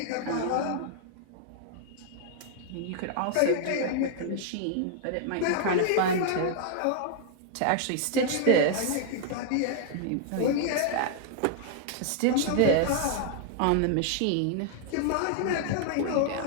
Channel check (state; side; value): different; both; correlation -0.01